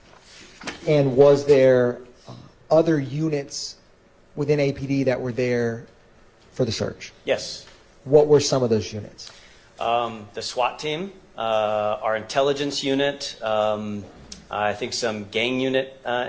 And was there other units within APD that were there for the search? Yes. What were some of those units? The SWAT team, our intelligence unit, I think some gang unit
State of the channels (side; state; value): both; identical; correlation 1.00